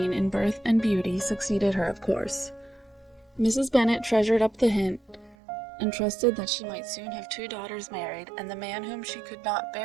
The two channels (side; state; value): left; drops out; at 5.4 s